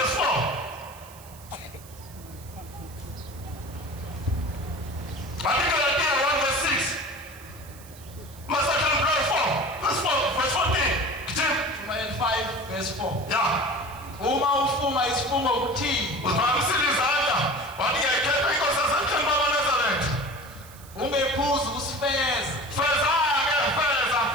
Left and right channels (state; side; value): noise; right; hiss, 21 dB below the sound